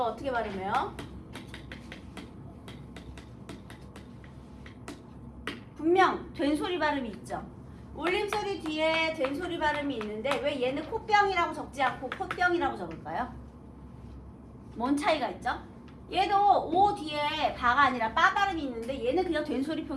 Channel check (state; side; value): identical; both; correlation 1.00